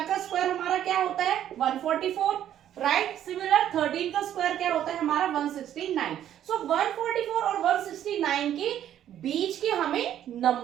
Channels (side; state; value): left; quieter; 10.9 dB